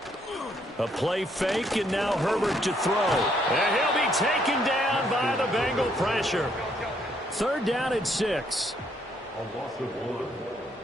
A play fake, and now Herbert to throw. And he'll be taken down by the Bengal pressure. 3rd down and 6. A loss of 1.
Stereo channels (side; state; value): both; normal; correlation 0.70